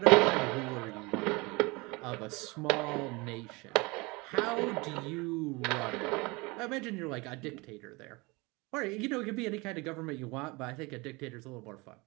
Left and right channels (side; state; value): left; quieter; 25.3 dB